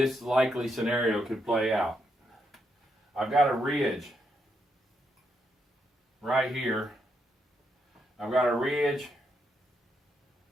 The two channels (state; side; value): normal; both; correlation 0.79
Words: likely scenario could play out. I've got a ridge right here. I've got a ridge